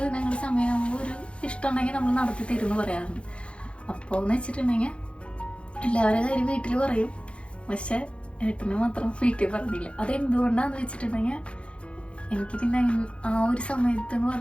നിങ്ങളുടെ സമയമാകുമ്പോൾ ഒരു ഇഷ്ടമുണ്ടെങ്കിൽ നമ്മൾ നടത്തി തരുമെന്ന് പറയാറുണ്ട്. അപ്പോൾ എന്ന് വെച്ചിട്ടുണ്ടെങ്കിൽ എല്ലാവരുടെ കാര്യം വീട്ടിൽ പറയും, പക്ഷെ ഏട്ടന് മാത്രം വീട്ടിൽ പറഞ്ഞില്ല. അതെന്തുകൊണ്ടാന്ന് വെച്ചിട്ടുണ്ടെങ്കിൽ എനിക്ക് പിന്നെ ആ ഒരു സമയത്ത് എന്ന്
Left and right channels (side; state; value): right; late; 0.059 ms